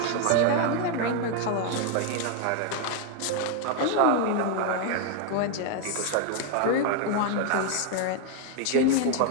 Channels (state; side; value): different; both; correlation 0.01